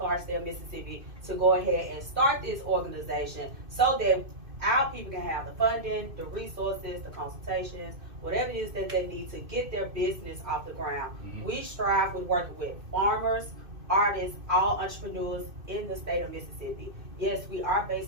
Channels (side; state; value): left; late; 2.6 ms